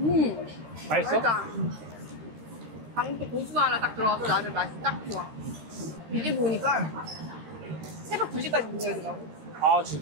맛있어? 방금 또 고수가 하나 딱 들어가서 나는 맛이 딱 좋아. 이게 보니까 새벽 2시까지 문 열더라고. 아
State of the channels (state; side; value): late; left; 13 ms